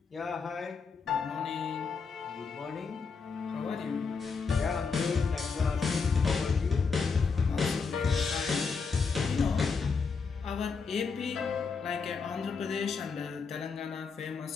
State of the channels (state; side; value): quieter; right; 5.1 dB